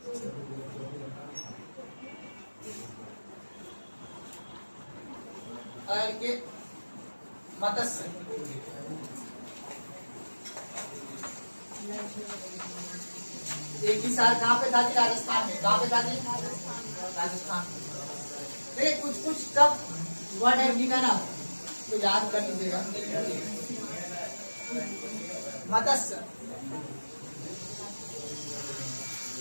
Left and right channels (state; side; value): inverted; both; correlation -1.00